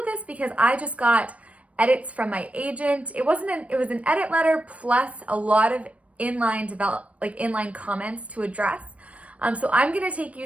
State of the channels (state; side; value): late; left; 0.065 ms